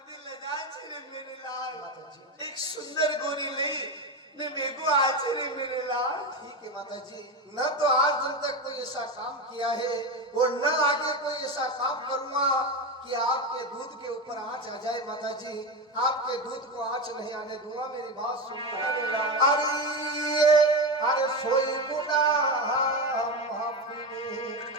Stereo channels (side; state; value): both; normal; correlation 0.17